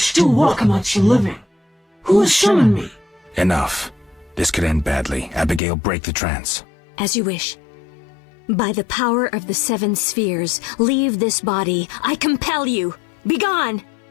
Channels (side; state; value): right; drops out; at 5.6 s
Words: walk amongst the living. Who has summoned me? Enough. This could end badly. Abigail, break the trance. As you wish. By the power of the 7 spheres, leave this body. I compel you. Begone!